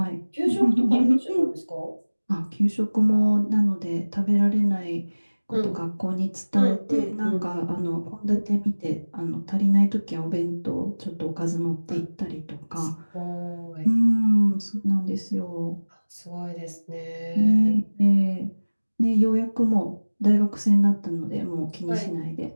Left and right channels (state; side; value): inverted; both; correlation -1.00